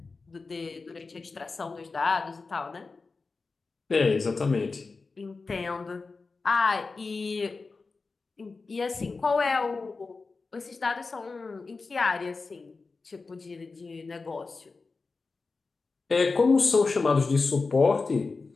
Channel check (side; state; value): right; quieter; 4.1 dB